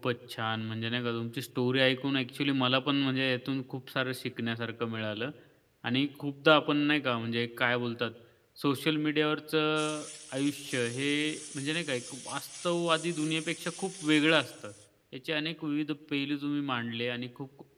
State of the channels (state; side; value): identical; both; correlation 1.00